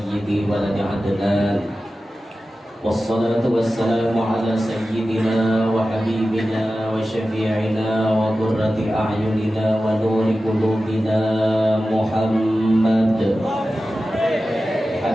waladi Adnan. Wassalatu wassalamu ala sayyidina wa habibina wa syafi'ina wa qurrati a'yunina wa nuri qulubina Muhammad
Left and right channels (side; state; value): both; normal; correlation 0.94